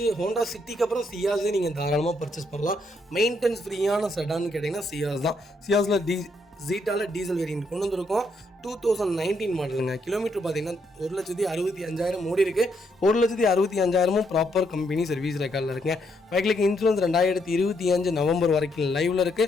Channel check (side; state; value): both; normal; correlation 0.75